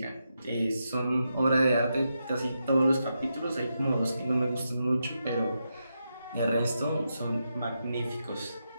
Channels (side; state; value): both; inverted; correlation -0.86